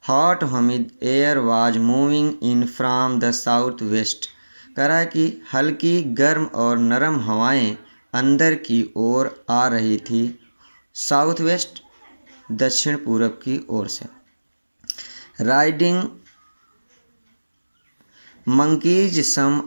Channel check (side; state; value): both; inverted; correlation -1.00